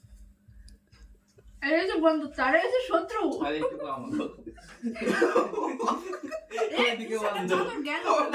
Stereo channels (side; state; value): both; identical; correlation 1.00